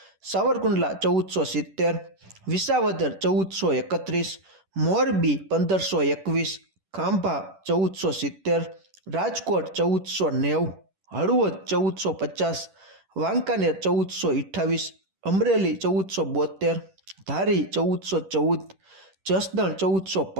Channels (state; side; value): late; left; 10 ms